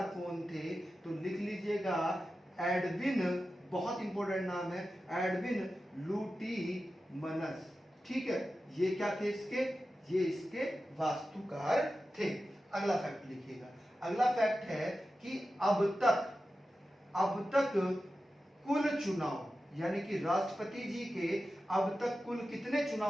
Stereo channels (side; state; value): both; normal; correlation 0.93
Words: कौन थे? तो लिख लीजिएगा एडविन, बहुत इंपॉर्टेंट नाम है, एडविन लुटियनस, ठीक है। ये क्या थे इसके? ये इसके वास्तुकार थे। अगला फैक्ट लिखिएगा। अगला फैक्ट है कि अब तक कुल चुनाव, यानी कि राष्ट्रपति जी के अब तक कुल कितने